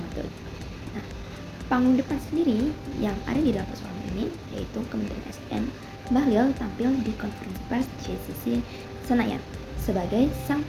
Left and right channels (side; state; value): both; identical; correlation 1.00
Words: Nah, panggung depan sendiri yang ada di dalam persoalan ini yaitu Kementerian SDM Bahlil tampil di konferensi pers JCC Senayan sebagai sang